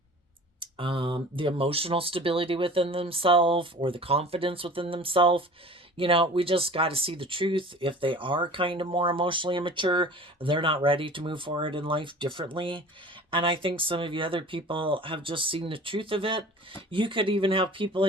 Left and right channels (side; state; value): both; normal; correlation 0.42